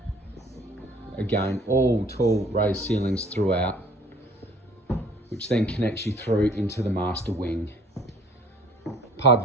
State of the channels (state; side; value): normal; both; correlation 0.54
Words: Again, all tall raised ceilings throughout, which then connects you through into the master wing. Part